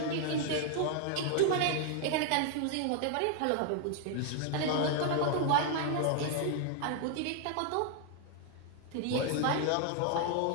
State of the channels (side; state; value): both; different; correlation 0.00